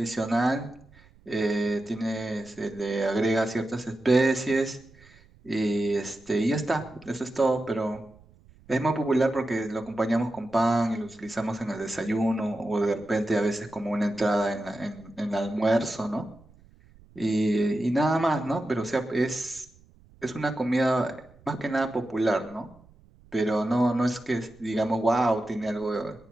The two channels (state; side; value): noise; right; rumble, 26 dB below the sound